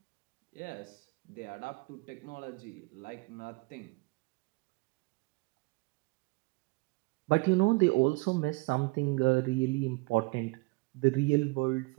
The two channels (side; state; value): left; quieter; 26.2 dB